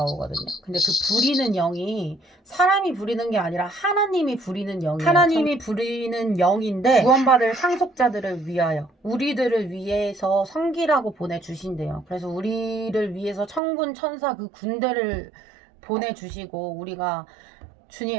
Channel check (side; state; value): left; drops out; at 13.6 s